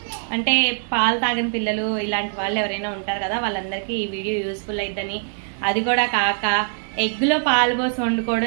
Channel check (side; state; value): left; silent; digital silence